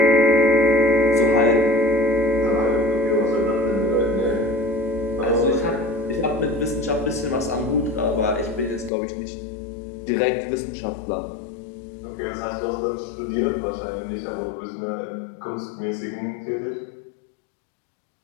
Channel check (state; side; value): drops out; right; at 8.9 s